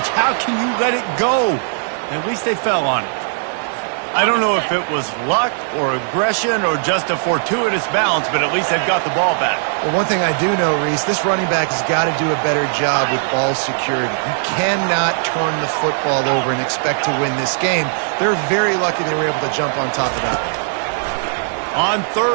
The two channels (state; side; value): silent; left; 57 dB below the other